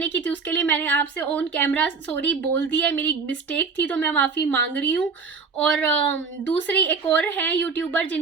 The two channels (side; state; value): left; quieter; 5.0 dB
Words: की थी उसके लिए मैंने आपसे ऑन कैमरा सॉरी बोल दिया है, मेरी मिस्टेक थी, तो मैं माफ़ी मांग रही हूँ। और दूसरी एक और है यूट्यूबर